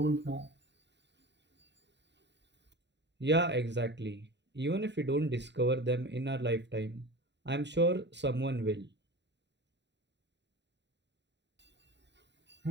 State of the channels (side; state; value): left; late; 0.51 ms